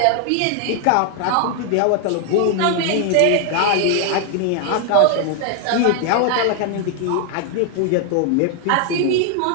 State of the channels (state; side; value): different; both; correlation 0.00